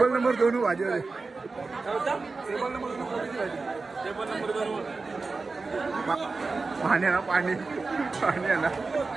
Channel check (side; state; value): left; quieter; 4.0 dB